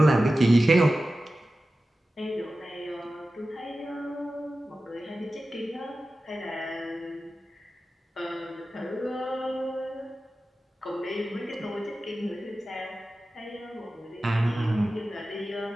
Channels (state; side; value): normal; both; correlation 0.94